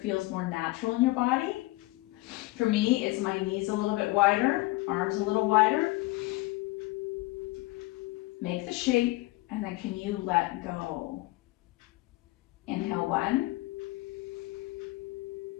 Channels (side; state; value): right; quieter; 20.5 dB